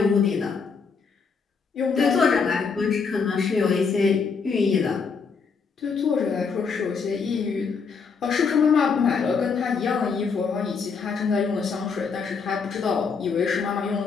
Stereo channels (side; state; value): right; quieter; 5.4 dB